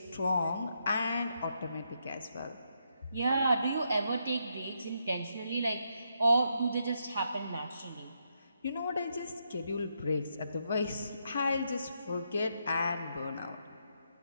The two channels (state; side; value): inverted; both; correlation -0.79